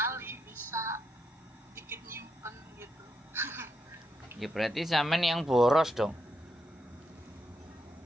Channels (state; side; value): normal; both; correlation 0.81